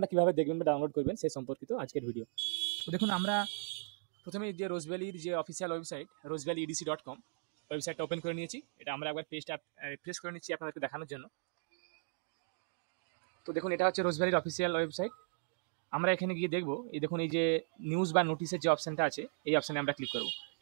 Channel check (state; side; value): silent; left; digital silence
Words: কীভাবে দেখবেন বা ডাউনলোড করবেন সেই সম্পর্কিত আজকের ভিডিও। তো দেখুন, আমরা প্রথমে যে রোজ ভ্যালির যে অফিসিয়াল ওয়েবসাইট rosevalleyedc.com ওয়েবসাইটটা ওপেন করে নিয়েছি। এটা আমরা একবার পেজটা রিফ্রেশ করে নিচ্ছি আপনাদেরকে দেখানোর জন্য। তো দেখুন, এটা হচ্ছে রোজ ভ্যালির অফিসিয়াল ওয়েবসাইট। আমরা এখানে গিয়ে দেখবো, এই দেখুন এই যে নিউজ বা নোটিসের যে অপশানটা আছে, এই অপশানে আমরা ক্লিক করব।